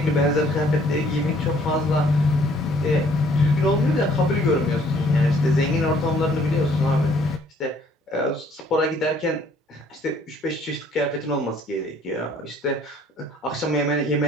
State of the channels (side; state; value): both; normal; correlation 0.60